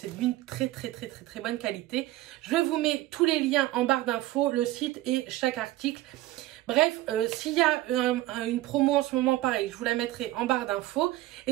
d'une très bonne qualité. Je vous mets tous les liens en barre d'infos, le site et chaque article. Bref, s'il y a une promo en ce moment, pareil, je vous la mettrai en barre d'infos.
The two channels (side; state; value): left; quieter; 16.4 dB